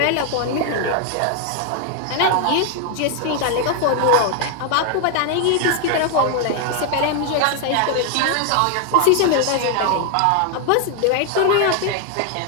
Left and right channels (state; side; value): different; both; correlation 0.00